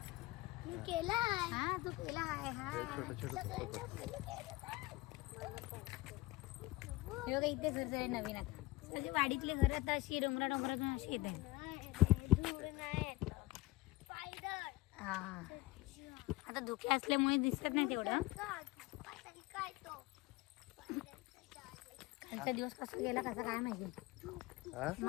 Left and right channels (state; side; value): quieter; right; 20.6 dB